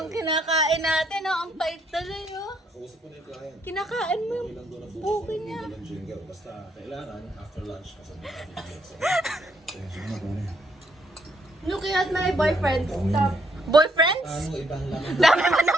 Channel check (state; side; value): normal; both; correlation 0.71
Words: kinakain natin. Oh. Ang pait tuloy, oh. Kinakain mo yung buki niya. Basta kailangan after lunch. Looking at my boyfriend. Stop. Boyfriends? Ano ibang laman? Dami mo